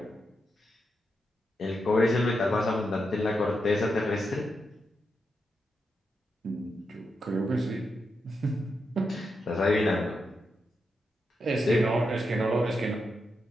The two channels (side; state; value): both; normal; correlation 0.85